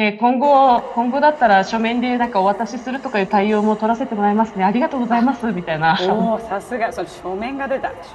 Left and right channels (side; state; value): both; identical; correlation 1.00